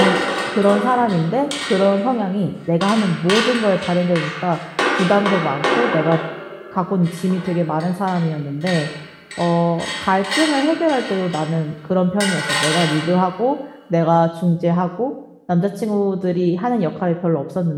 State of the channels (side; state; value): both; identical; correlation 1.00